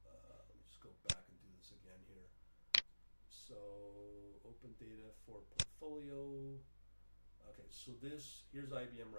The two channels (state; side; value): inverted; both; correlation -1.00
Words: Let me just go back and do this again here. So open data for portfolio. Okay, so here's IBM